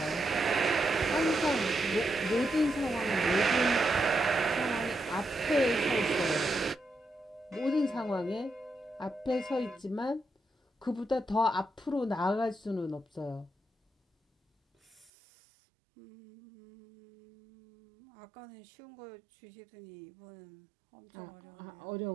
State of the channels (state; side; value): drops out; left; at 15.1 s